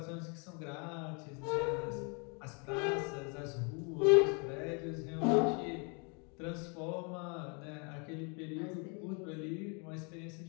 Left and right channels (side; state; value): right; quieter; 34.9 dB